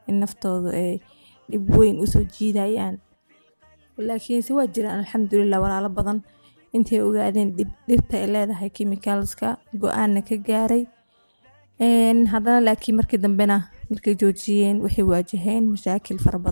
in naftoodu ay dhib weyn usoo jiidayaan, laakiinse waa jiraan alxamdulillah walaalo badan intay ogaadeen dhibta ay leedahay chemicalska go-aanna ka gaaray. haddana laakiin markii dambena markay joojiyeen waxay waajaheen mashaakil fara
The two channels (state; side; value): inverted; both; correlation -1.00